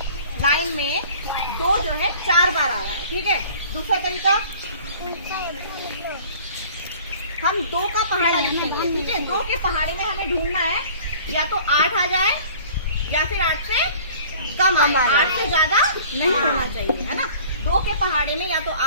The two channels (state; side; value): inverted; both; correlation -0.48